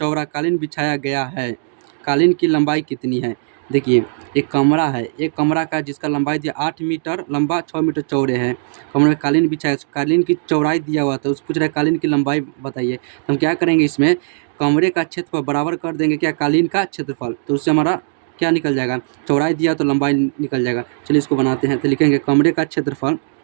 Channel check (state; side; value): silent; left; digital silence